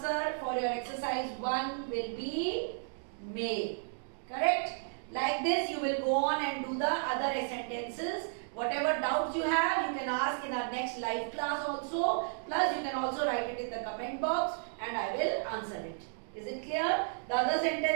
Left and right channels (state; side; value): silent; left; digital silence